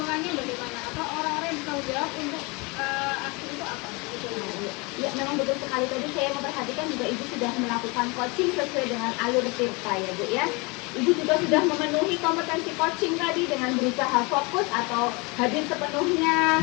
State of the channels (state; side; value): quieter; right; 27.8 dB